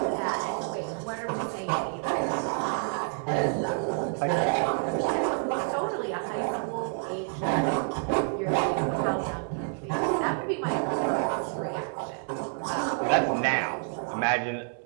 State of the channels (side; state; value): left; silent; 59 dB below the other